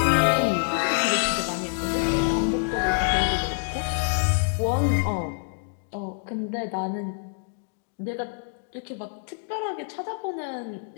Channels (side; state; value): right; silent; digital silence